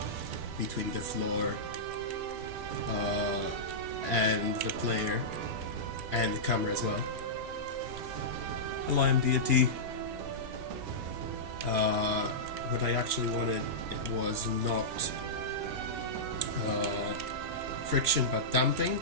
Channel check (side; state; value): left; late; 3.0 ms